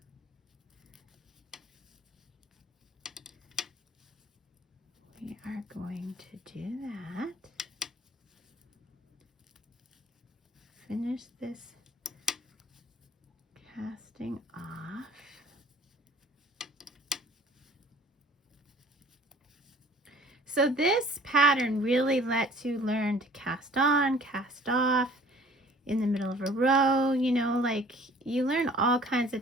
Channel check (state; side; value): normal; both; correlation 0.51